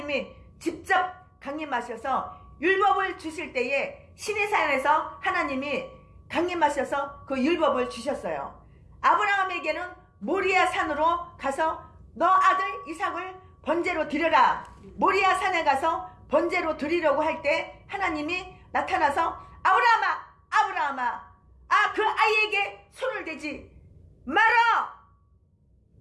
직접 강림하셔서 율법을 주실 때에 시내산에서 하나님이 강림하셔서 그 율법을 주셨어요. 아브라함에게는 모리아 산으로 가서 너 아들 이삭을 번제로 드려라. 모리아 산에 가서 번제로 드리려고 할 때 하나님이 나타나서 아브라함아, 아브라함아, 그 아이에게 손을 대지 마라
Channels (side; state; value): both; identical; correlation 1.00